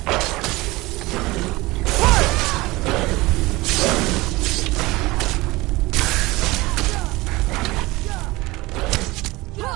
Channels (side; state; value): left; quieter; 21.1 dB